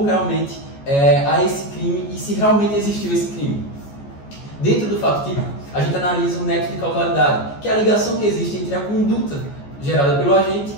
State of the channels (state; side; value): late; right; 14 ms